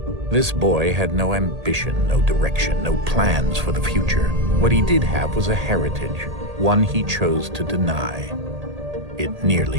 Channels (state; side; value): late; left; 1.8 ms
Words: This boy had no ambition, no direction, no plans for the future. What he did have was a heritage, one he chose to deny. It